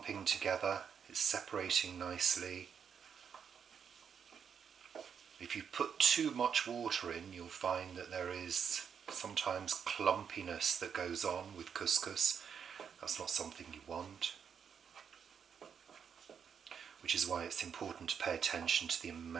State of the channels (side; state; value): left; quieter; 7.3 dB